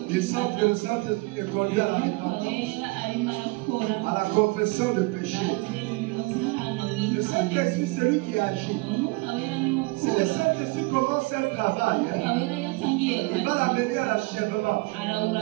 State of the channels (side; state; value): left; quieter; 25.5 dB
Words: Ils sentent que le Saint-Esprit est conduit à la repentance, à la confession de péché. Le Saint-Esprit, c'est lui qui agit. Si le Saint-Esprit commence un travail, il va l'amener à l'achèvement.